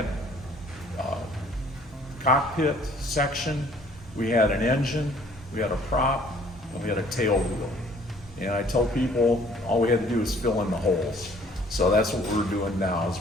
cockpit section, we had an engine, we had a prop, and we had a tail wheel. And I tell people all we had to do is fill in the holes. So that's what we're doing now, is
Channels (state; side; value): normal; both; correlation 0.57